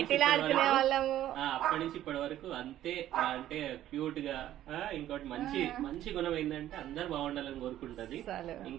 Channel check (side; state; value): left; quieter; 12.7 dB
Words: ఆడుకునే వాళ్ళము. అప్పటి నుంచి ఇప్పటి వరకు అంతే. అంటే క్యూట్ గా ఇంకోటి మంచి గుణం ఏంటంటే అందరు బాగుండాలని కోరుకుంటది.